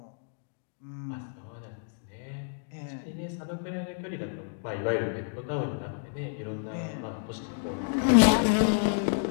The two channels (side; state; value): right; silent; digital silence